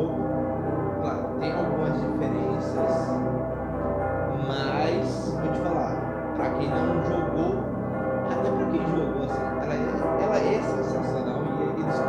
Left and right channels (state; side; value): identical; both; correlation 1.00